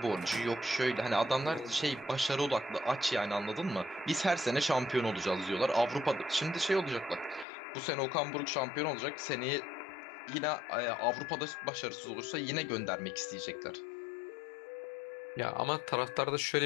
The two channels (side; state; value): right; drops out; at 7.5 s